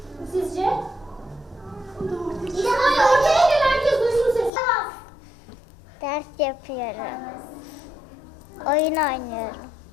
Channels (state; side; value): drops out; right; at 4.5 s